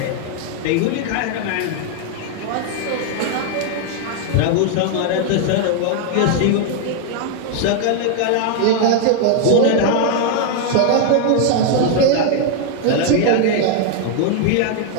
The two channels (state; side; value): different; both; correlation 0.00